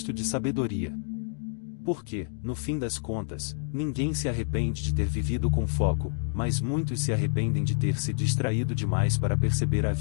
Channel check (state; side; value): silent; right; digital silence